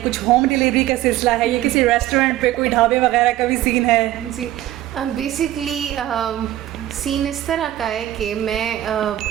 कुछ होम डिलीवरी का सिलसिला है, या किसी रेस्टोरेंट पे कोई ढाबे वगैरह का भी सीन है? जी, बेसिकली सीन इस तरह का है कि मैं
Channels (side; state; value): left; quieter; 14.1 dB